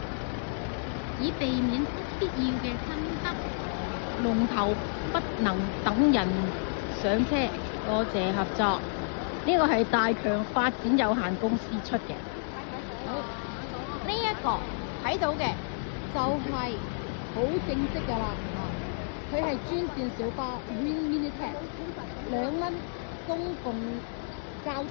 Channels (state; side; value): silent; right; digital silence